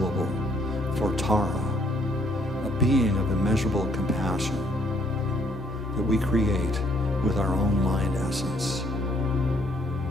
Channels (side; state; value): both; normal; correlation 0.66